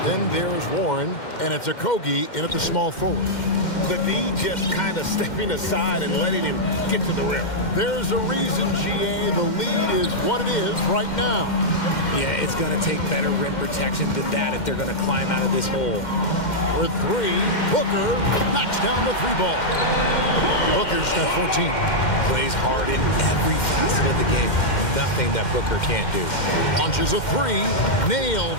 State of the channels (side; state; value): right; late; 2.1 ms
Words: Then there's Warren, and it's Okogie in at the small forward. The D just kind of stepping aside and letting him get to the rim. There's a reason, GA, the lead is what it is right now. Yeah, it's going to take better rim protection than that if they're going to climb out of this hole. For 3, Booker knocks down the 3 ball. Booker's got 14. Plays hard in every facet of the game. Nothing that Booker can't do. Launches a 3, nailed